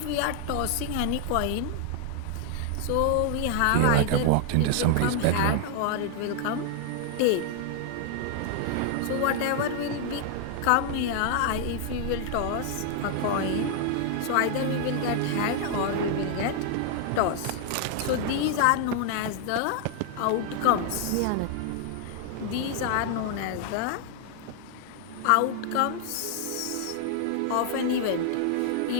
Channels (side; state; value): both; different; correlation 0.00